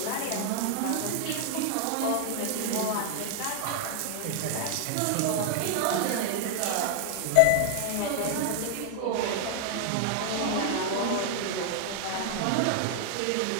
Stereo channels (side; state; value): both; different; correlation 0.00